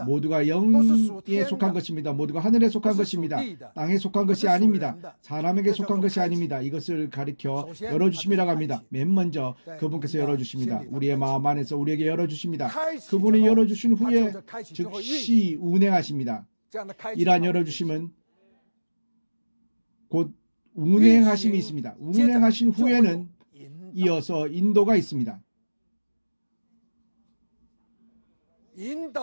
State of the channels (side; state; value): both; inverted; correlation -1.00